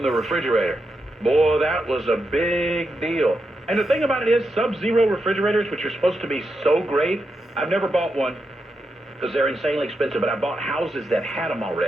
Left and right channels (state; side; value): normal; both; correlation 0.85